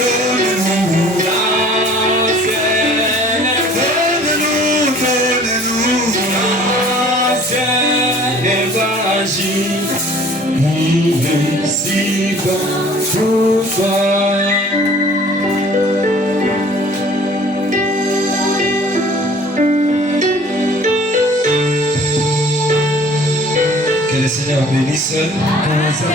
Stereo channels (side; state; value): both; normal; correlation 0.51